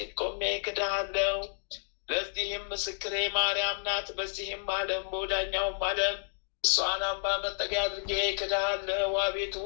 ቆሜ ክድሃለሁ። ለዚህም ምስክሬ ማርያም ናት። በዚህም ዓለም በወዳኛውም ዓለም እሷን አምባ መጠጊያ አድርጌ ክድሃለሁ። አቤቱ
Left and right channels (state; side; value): silent; right; digital silence